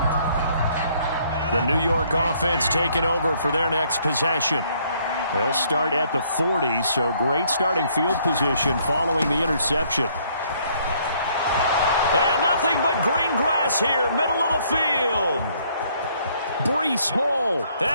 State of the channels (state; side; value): inverted; both; correlation -0.65